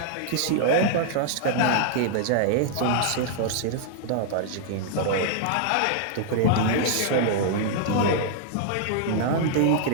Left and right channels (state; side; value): different; both; correlation -0.01